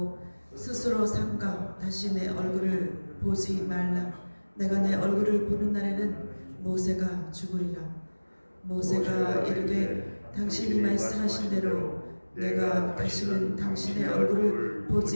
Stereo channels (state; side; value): inverted; both; correlation -1.00